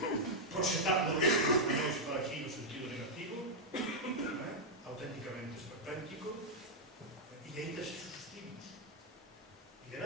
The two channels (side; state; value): both; normal; correlation -0.03